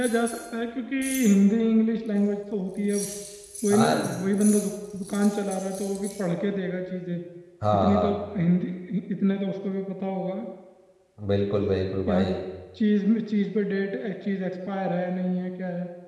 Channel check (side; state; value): both; identical; correlation 1.00